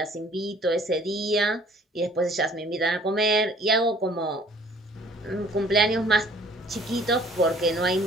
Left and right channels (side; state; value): both; normal; correlation 0.55